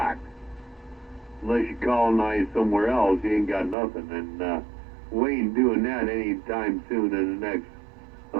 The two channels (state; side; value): drops out; left; at 3.8 s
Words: Unless you colonize somewhere else, you ain't got nothing. And we ain't doing that anytime soon in the next